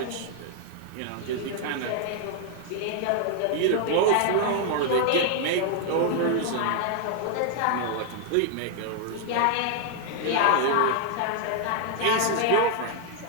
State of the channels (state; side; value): different; both; correlation 0.00